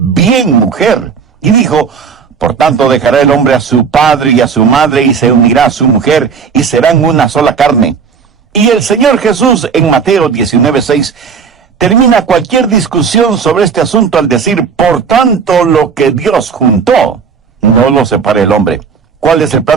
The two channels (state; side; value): quieter; left; 6.1 dB